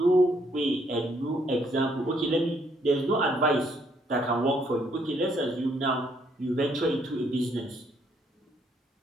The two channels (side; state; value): both; normal; correlation 0.70